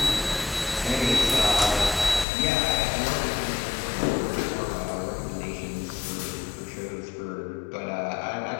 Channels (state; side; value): drops out; right; at 2.2 s